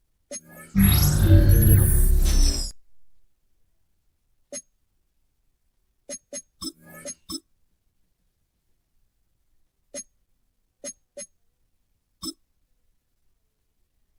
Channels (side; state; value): both; identical; correlation 1.00